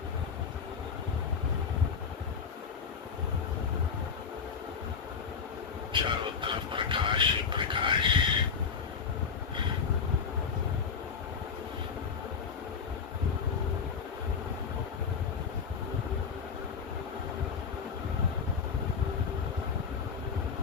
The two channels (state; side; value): quieter; right; 6.1 dB